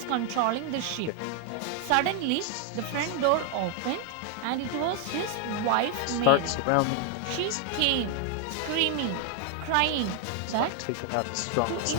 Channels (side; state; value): both; different; correlation 0.00